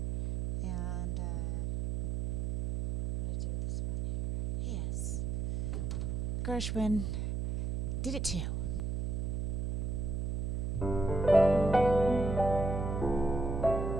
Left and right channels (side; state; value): right; noise; hum, 1 dB below the sound